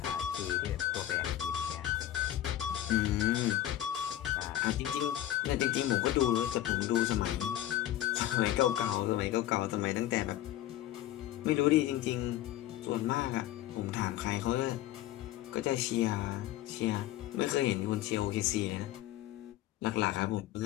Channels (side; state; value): right; quieter; 13.2 dB